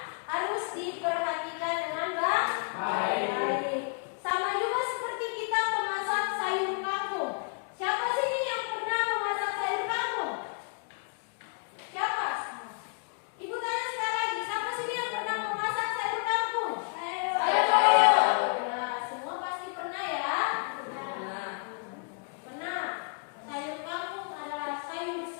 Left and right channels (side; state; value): right; quieter; 39.2 dB